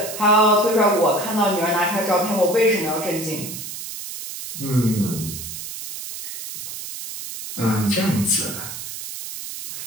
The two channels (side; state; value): right; noise; hiss, 9 dB below the sound